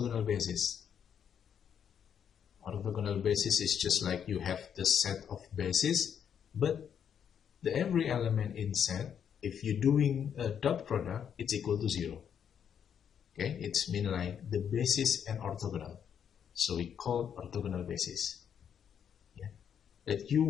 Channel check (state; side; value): quieter; right; 8.2 dB